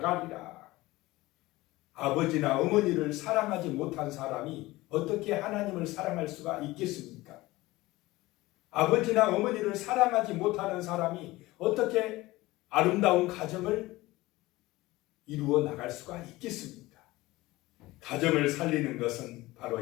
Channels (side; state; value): right; quieter; 19.2 dB